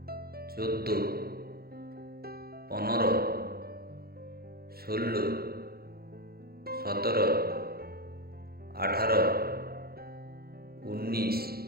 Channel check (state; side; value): late; left; 0.45 ms